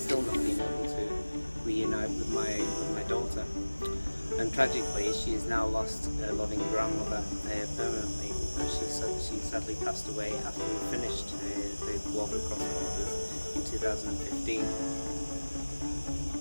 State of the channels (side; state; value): both; inverted; correlation -1.00